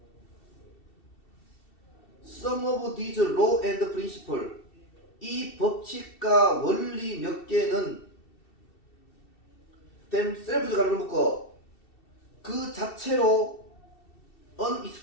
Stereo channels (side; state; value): right; late; 2.7 ms